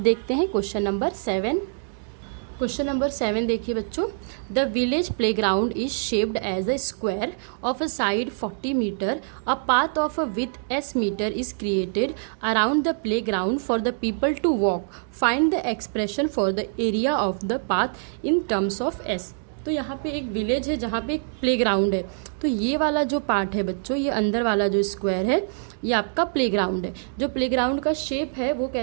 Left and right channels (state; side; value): silent; left; digital silence